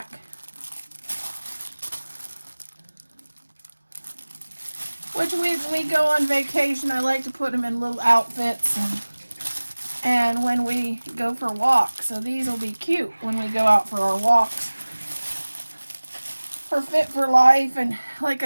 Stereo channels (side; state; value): both; inverted; correlation -1.00